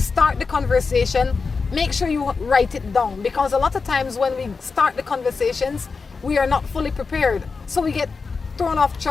the conversation, make sure you write it down, because a lot of times when we start the conversations, we are not fully prepared. So we get thrown off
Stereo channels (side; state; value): right; quieter; 4.7 dB